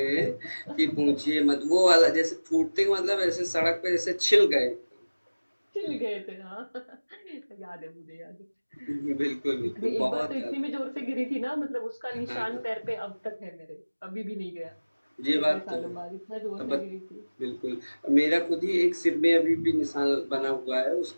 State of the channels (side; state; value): both; inverted; correlation -1.00